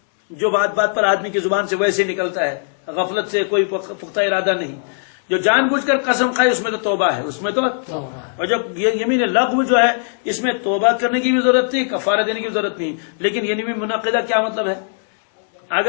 جو بات بات پر آدمی کی زبان سے ویسے نکلتا ہے, غفلت سے کوئی پختہ ارادہ نہیں. جو جان بوجھ کر قسم کھائے اس میں تو توبہ ہے, اس میں تو. اور جب یہ یمین لغو جو ہے اس میں توبہ کرنے کی بھی ضرورت نہیں, کفارہ دینے کی بھی ضرورت نہیں. لیکن یمین منعقدہ کیا مطلب ہے؟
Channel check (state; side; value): silent; right; digital silence